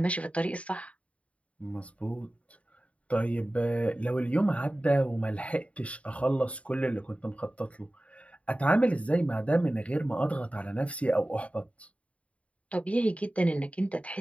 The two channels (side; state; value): right; late; 0.065 ms